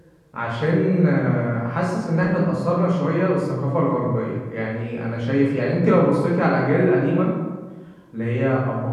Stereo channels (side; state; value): both; identical; correlation 1.00